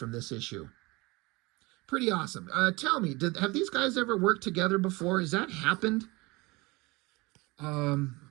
this issue? Pretty awesome. Tell me, have these guys ever worked together before? Has that happened?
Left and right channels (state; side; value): quieter; left; 24.0 dB